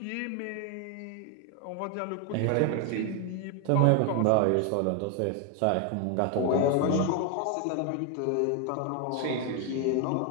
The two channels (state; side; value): different; both; correlation 0.01